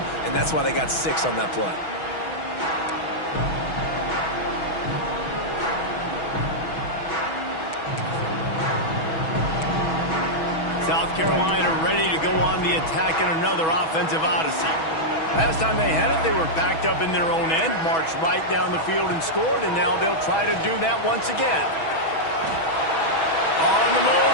and that's why they got 6 on that play. South Carolina ready to go on the attack in another offensive odyssey. Last time they had it, they were backed up in their own end, marched right down the field and scored, and now they'll try to do that once again. On the move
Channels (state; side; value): late; right; 6.2 ms